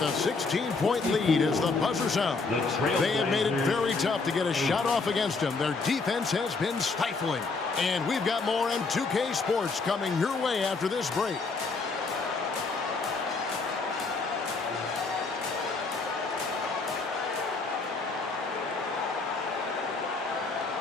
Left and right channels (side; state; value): right; quieter; 4.1 dB